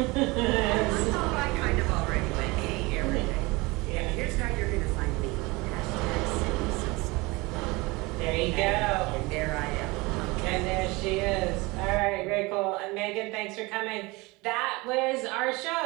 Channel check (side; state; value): left; quieter; 23.9 dB